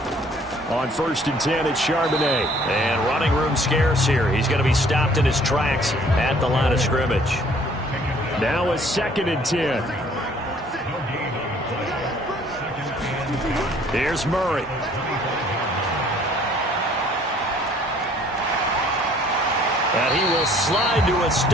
On 1st and 10, it's Charbonnet. And running room scarce here. He's going to be stopped in his tracks at the line of scrimmage. Now a 2nd and 10. Here's Murray. And he will slide to a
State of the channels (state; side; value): normal; both; correlation 0.58